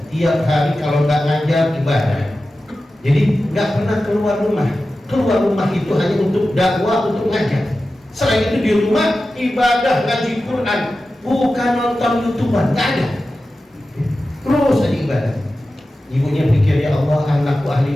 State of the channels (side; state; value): both; normal; correlation 0.94